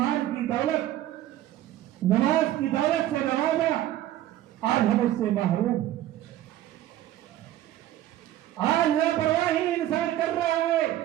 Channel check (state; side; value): quieter; left; 13.5 dB